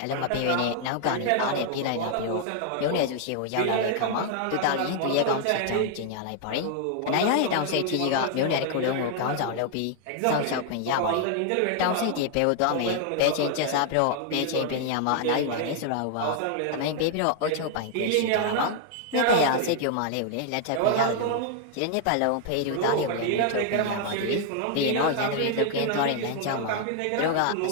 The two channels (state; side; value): different; both; correlation 0.00